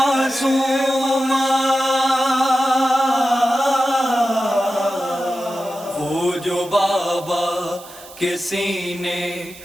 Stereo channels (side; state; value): right; noise; hiss, 19 dB below the sound